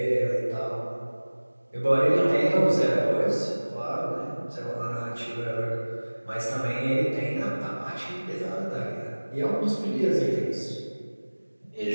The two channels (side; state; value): both; inverted; correlation -1.00